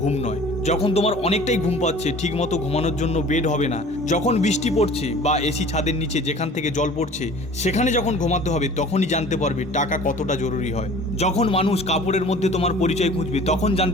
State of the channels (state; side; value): normal; both; correlation 0.46